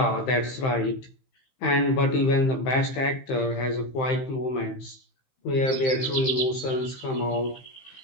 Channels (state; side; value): late; right; 15 ms